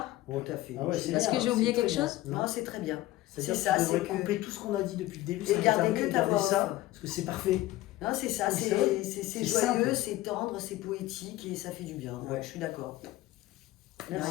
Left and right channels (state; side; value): quieter; right; 16.5 dB